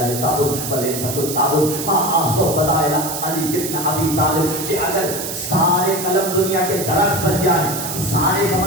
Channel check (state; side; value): noise; right; hiss, 6 dB below the sound